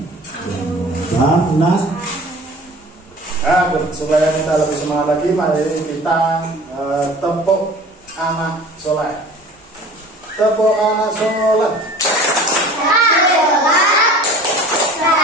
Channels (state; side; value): normal; both; correlation 0.44